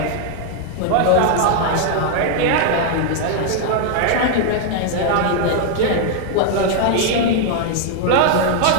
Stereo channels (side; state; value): both; different; correlation 0.00